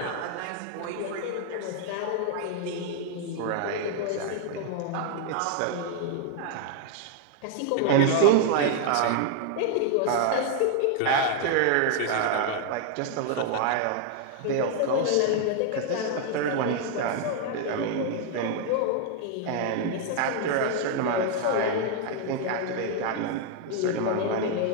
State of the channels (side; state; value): both; different; correlation 0.00